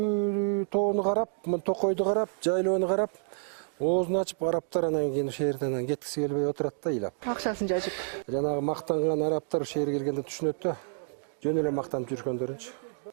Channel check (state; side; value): silent; left; digital silence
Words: тоону карап, токойду карап, жайлоону карап, оозун ачып арабтар анан кийин ошол жерден кеткиси келбей отурат да ыйлап. Акчасын жажып. Жанагы мактанган арабтар ошол жерге келгенде түшүнөт да. Жөн эле мактанып жүргөндөрүнчү.